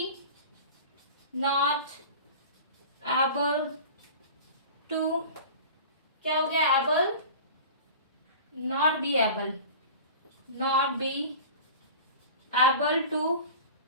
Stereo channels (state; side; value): inverted; both; correlation -0.37